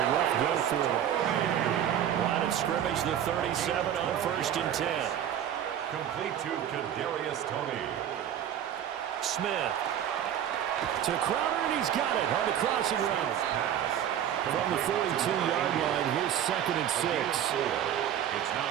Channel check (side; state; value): left; quieter; 10.1 dB